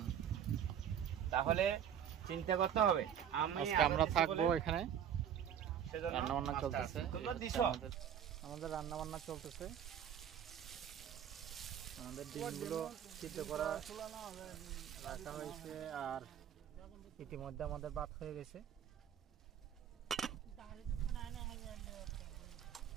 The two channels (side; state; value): left; quieter; 9.2 dB